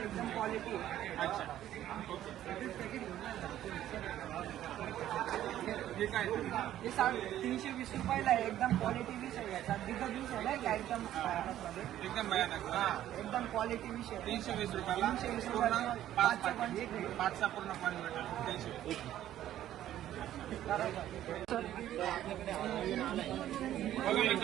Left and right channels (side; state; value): left; quieter; 12.4 dB